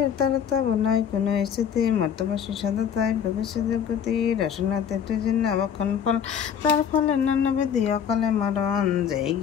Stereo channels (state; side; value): quieter; right; 8.1 dB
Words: তারতা বোনাই কোনো স্থিতি মর্তবাসী সদতায় ভোগেছে দুর্গতি। রসনাতে অবক্ষণ ফল তার ফলে নানাবিধি অকালে মরণ। যেই